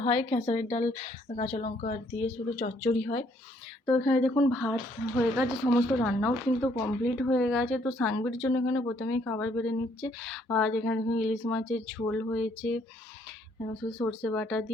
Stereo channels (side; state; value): both; normal; correlation 0.67